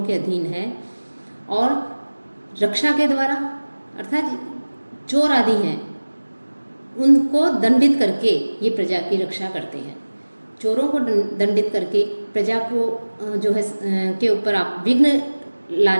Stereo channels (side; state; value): both; inverted; correlation -1.00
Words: के अधीन है। और रक्षा के द्वारा अर्थात चोर आदि हैं उनको दंडित करके ये प्रजा की रक्षा करते हैं। चोरों को दंडित करके प्रजा को जो है के ऊपर आप विघ्न